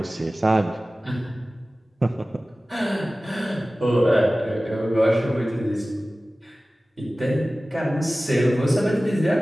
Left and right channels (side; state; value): both; normal; correlation 0.97